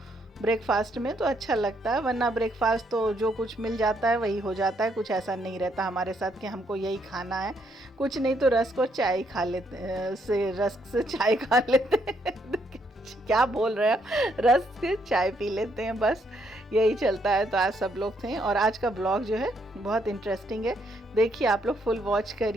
ब्रेकफास्ट में तो अच्छा लगता है, वरना ब्रेकफास्ट तो जो कुछ मिल जाता है वही हो जाता है। कुछ ऐसा नहीं रहता हमारे साथ कि हमको यही खाना है, कुछ नहीं तो रस्क और चाय खा लेते रस्क से चाय खा लेते हैं क्या बोल रहे हैं, रस्क से चाय पी लेते हैं, बस यही चलता है। तो आज सब लोग थे और आज का ब्लॉग जो है बहुत इंटरेस्टिंग है। देखिए आप लोग फुल वॉच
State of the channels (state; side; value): normal; both; correlation 0.73